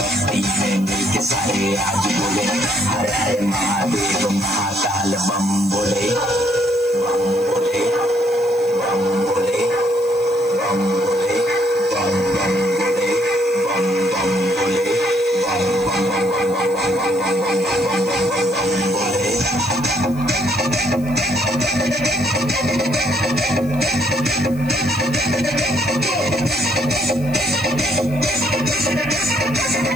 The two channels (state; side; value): noise; left; hiss, 22 dB below the sound